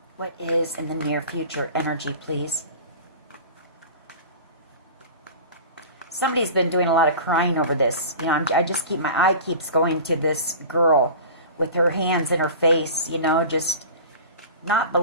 What is in the near future energy, please? Somebody's been doing a lot of crying over this. You know, I just keep, my eye keeps going to this girl with her hands in her face, you know, just not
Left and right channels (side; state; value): both; inverted; correlation -0.36